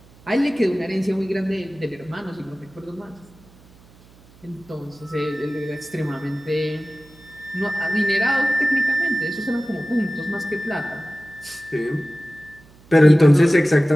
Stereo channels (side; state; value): right; noise; hum, 26 dB below the sound